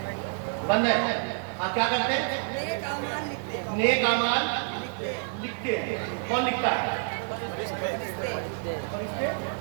بند ہے. ہاں کیا کرتے ہیں؟ نیک اعمال لکھتے ہیں. کون لکھتا ہے؟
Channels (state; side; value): silent; left; 59 dB below the other